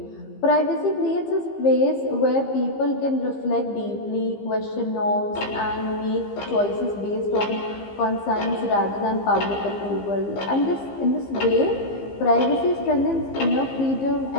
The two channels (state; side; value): late; right; 15 ms